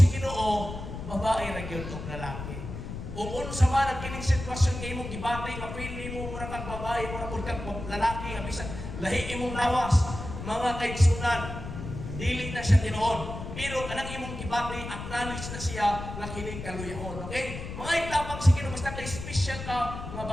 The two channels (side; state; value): left; noise; rumble, 8 dB below the sound